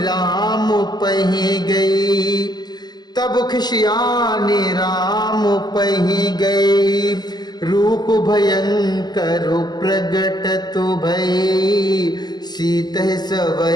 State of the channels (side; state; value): right; late; 0.20 ms